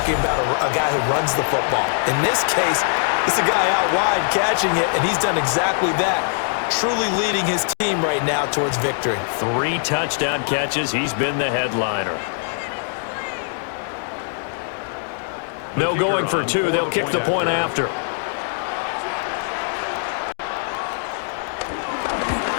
about a guy who runs the football. In this case, it's a guy out wide catching it, and he's done exactly that, truly leading his team right now towards victory. 3 touchdown catches. He's been the headliner. No going for 2. They'll kick the point after.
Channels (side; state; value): right; silent; 64 dB below the other